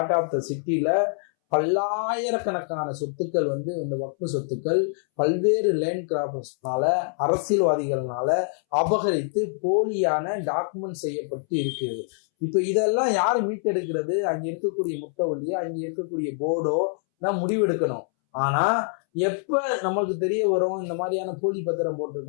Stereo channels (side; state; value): right; silent; 62 dB below the other